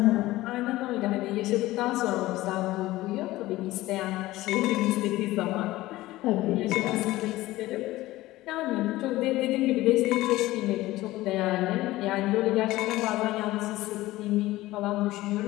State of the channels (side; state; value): right; quieter; 17.4 dB